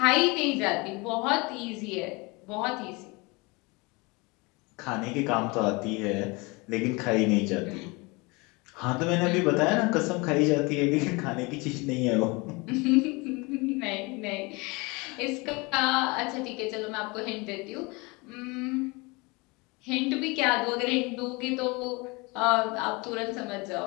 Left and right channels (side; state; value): right; quieter; 26.5 dB